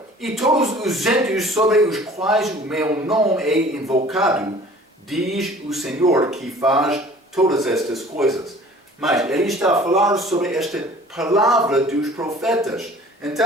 e todos os gentios sobre os quais o meu nome é invocado, diz o Senhor que faz todas estas coisas. Mas ele está a falar sobre esta palavra dos profetas.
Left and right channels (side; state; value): both; normal; correlation 0.49